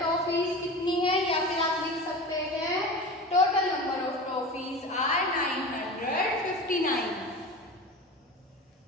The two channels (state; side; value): normal; both; correlation 0.31